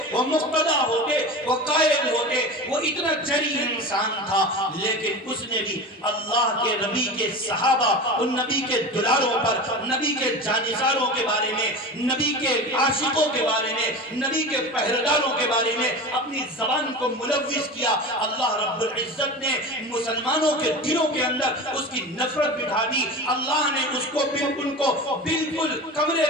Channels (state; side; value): normal; both; correlation 0.30